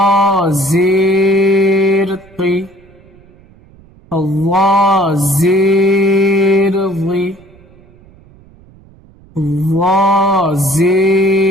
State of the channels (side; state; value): right; noise; rumble, 27 dB below the sound